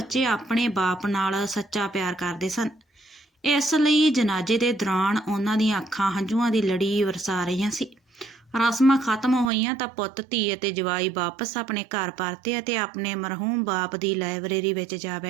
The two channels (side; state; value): left; drops out; at 9.5 s